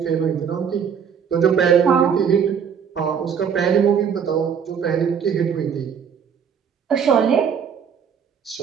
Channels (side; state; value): left; quieter; 7.3 dB